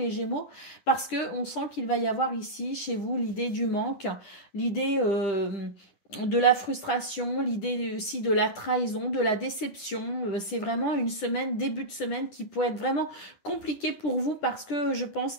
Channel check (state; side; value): late; right; 10 ms